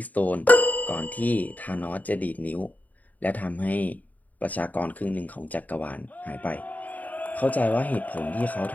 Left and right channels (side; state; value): right; late; 0.076 ms